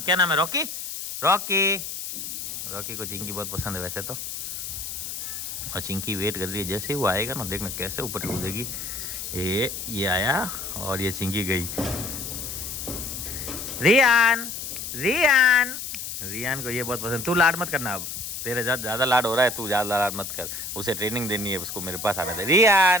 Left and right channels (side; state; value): left; noise; hiss, 7 dB below the sound